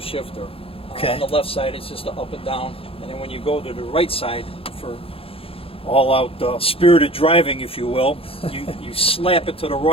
Okay. On the left side it's just a up and down, and then when you go to the right side for all-out spirited driving, if you will, you slap it to the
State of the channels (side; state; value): right; late; 0.27 ms